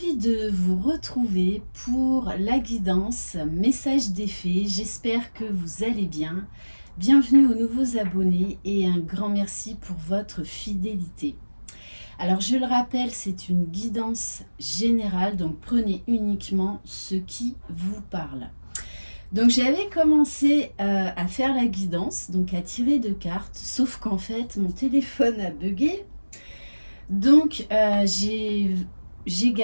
de vous retrouver pour la guidance message des fées. J'espère que vous allez bien. Bienvenue aux nouveaux abonnés et un grand merci pour votre fidélité. Alors je le rappelle, c'est une guidance générale, donc prenez uniquement ce qui vous parle. Donc j'avais commencé à faire la guidance, donc à tirer de cartes, sauf qu'en fait mon téléphone a bugué. Donc j'ai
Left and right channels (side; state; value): both; inverted; correlation -1.00